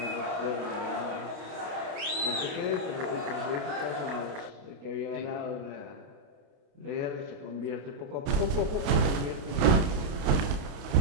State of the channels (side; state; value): left; late; 29 ms